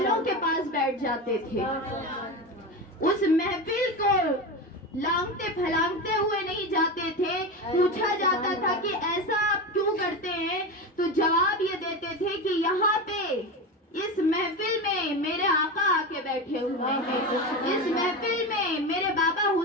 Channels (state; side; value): normal; both; correlation 0.21